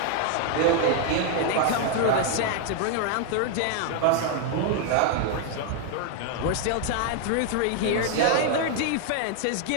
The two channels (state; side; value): different; both; correlation 0.00